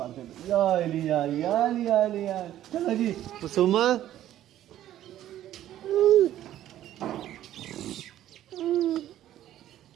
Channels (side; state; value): left; quieter; 12.6 dB